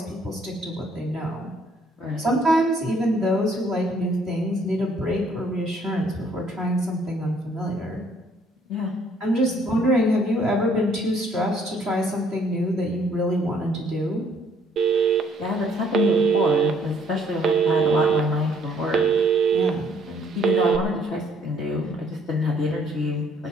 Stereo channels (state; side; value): normal; both; correlation 0.64